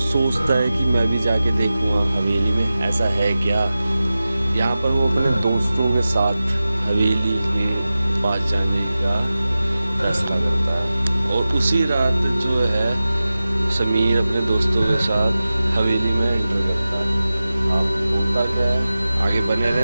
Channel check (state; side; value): inverted; both; correlation -0.95